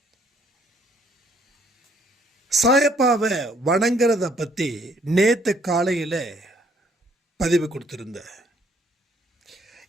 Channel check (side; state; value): both; normal; correlation 0.65